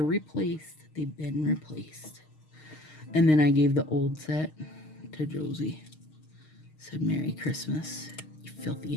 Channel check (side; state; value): right; late; 6.5 ms